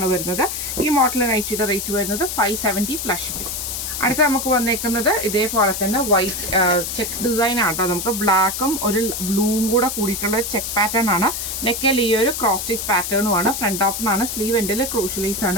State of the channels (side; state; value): left; noise; hiss, 4 dB below the sound